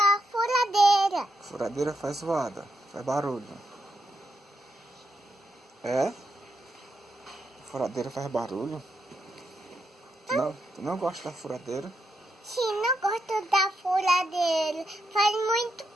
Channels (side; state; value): both; normal; correlation 0.83